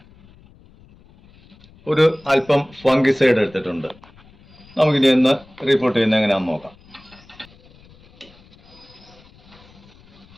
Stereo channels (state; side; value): noise; left; rumble, 26 dB below the sound